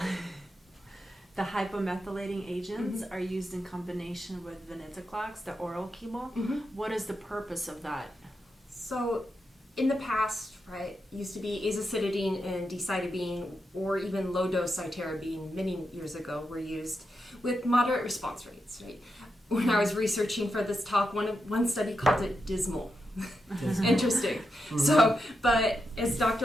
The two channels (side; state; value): both; normal; correlation 0.86